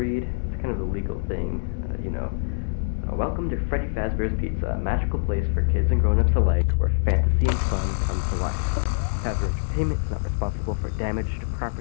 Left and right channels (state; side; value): silent; right; digital silence